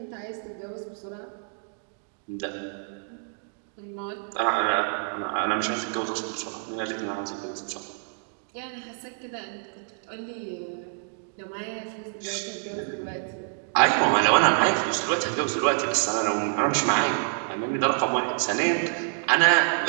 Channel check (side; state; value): left; silent; digital silence